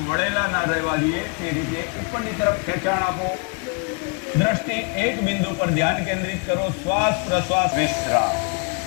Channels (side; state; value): right; quieter; 34.6 dB